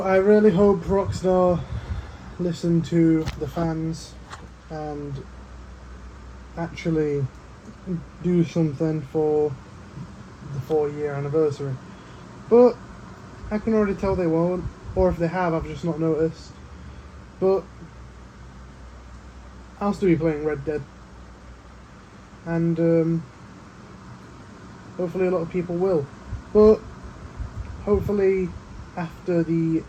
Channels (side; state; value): both; identical; correlation 1.00